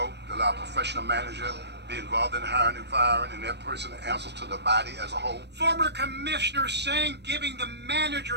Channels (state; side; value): late; left; 0.50 ms